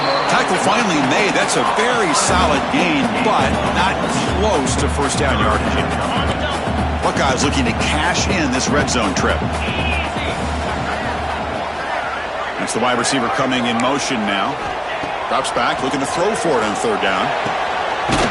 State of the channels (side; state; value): both; identical; correlation 1.00